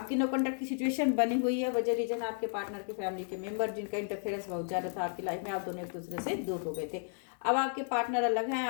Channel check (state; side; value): silent; right; 56 dB below the other